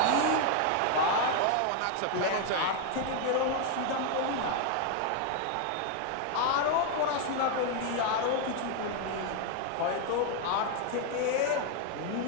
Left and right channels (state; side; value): different; both; correlation 0.00